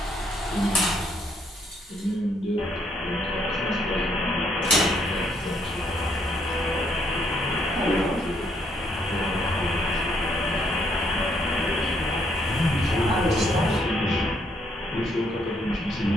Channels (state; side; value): normal; both; correlation 0.70